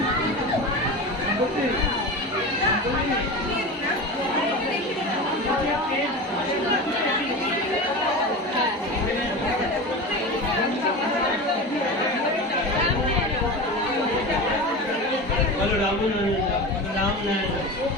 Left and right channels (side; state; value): both; normal; correlation 0.28